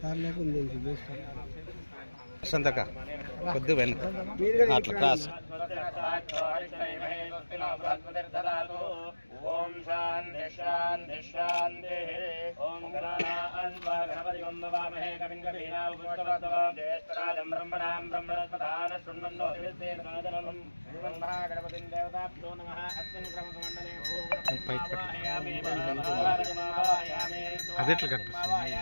సార్ లేకుండా సంతక కొద్ది వెనక అట్లా క్రాస్ ఓం శాంతి శాంతి శాంతి ఓం గణపతి వందవామహే కవిం కవీనాం ఉపనిషద్వః జ్యేష్ఠరాజం బ్రహ్మణాం బ్రహ్మణస్పదాన శృణ్వన్నో దివ్యసేనకాదనం శ్రీమన్ మహాగణపతిం దేవతాభ్యో నమః అస్మిన్ క్రమసమండలే అదెట్లా కనిపిస్తుంది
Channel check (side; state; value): both; inverted; correlation -1.00